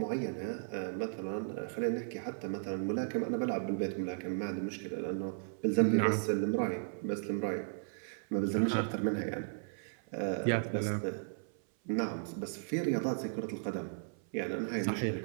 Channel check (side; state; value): left; silent; 54 dB below the other